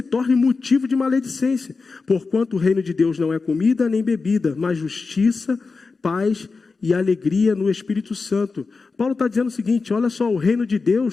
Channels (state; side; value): quieter; right; 4.3 dB